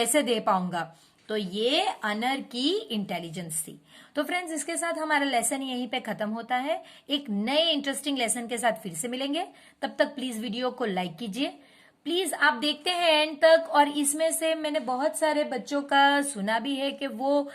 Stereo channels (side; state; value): both; identical; correlation 1.00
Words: दे पाऊंगा। तो ये अनर की इंटेलिजेंस थी। तो फ्रेंड्स इसके साथ हमारा लेसन यहीं पे खत्म होता है। एक नए इंटरेस्टिंग लेसन के साथ फिर से मिलेंगे, तब तक प्लीज वीडियो को लाइक कीजिए। प्लीज आप देखते हैं एंड तक, और इसमें से मैंने बहुत सारे बच्चों का सुना भी है कि वो